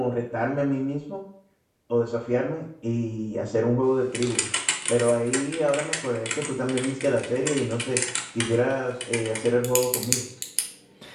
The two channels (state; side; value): identical; both; correlation 1.00